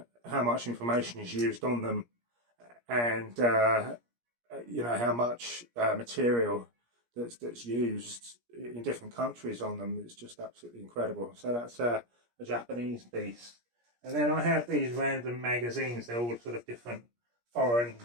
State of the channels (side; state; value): left; late; 17 ms